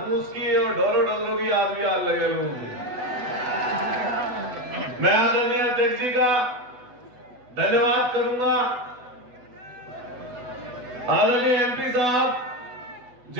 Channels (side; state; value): left; late; 8.1 ms